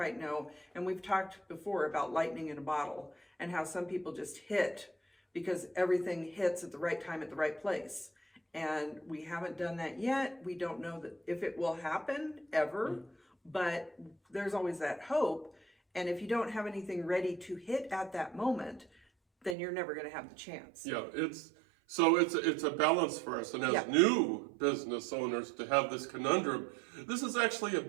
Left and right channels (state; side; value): drops out; left; at 19.6 s